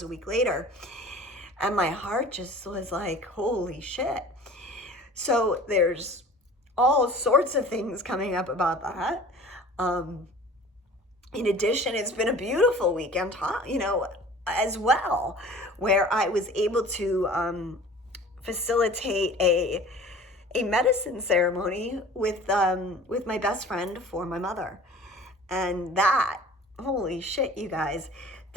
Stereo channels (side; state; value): both; normal; correlation 0.44